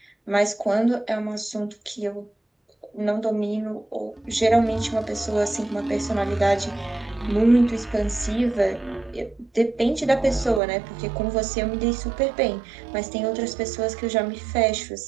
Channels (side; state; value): left; drops out; at 10.6 s